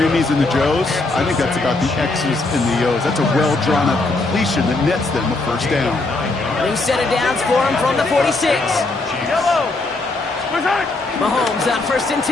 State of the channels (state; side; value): quieter; right; 3.2 dB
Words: and the Joes. I think that's about the X's and the O's. That's a well-drawn-up completion that nets them a first down. New set of downs for him from the 46. Mahomes on first and